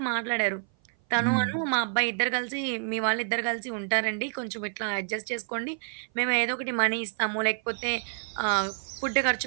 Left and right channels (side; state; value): left; silent; 56 dB below the other